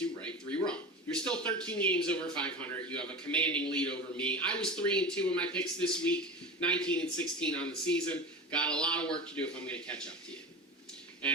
right, 3 wrong. You're still 13 games over 500. You have a commanding lead over me. I was 3-2 in my picks this week, 19-16 on the season. Got a lot of work to do if I'm going to catch up to you.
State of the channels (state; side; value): normal; both; correlation 0.29